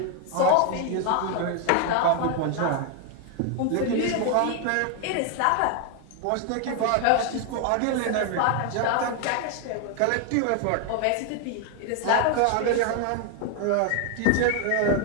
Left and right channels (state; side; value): different; both; correlation 0.00